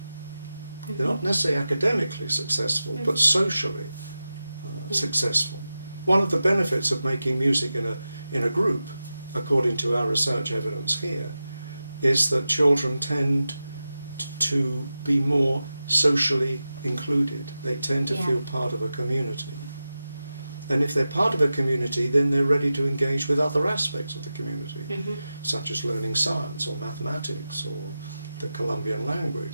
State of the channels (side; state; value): both; inverted; correlation -0.93